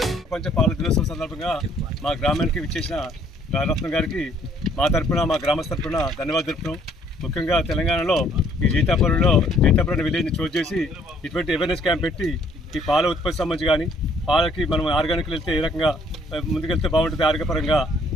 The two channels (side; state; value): both; normal; correlation 0.63